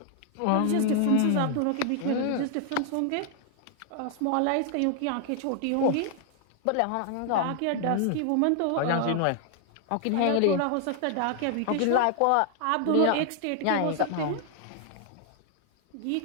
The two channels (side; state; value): both; different; correlation 0.00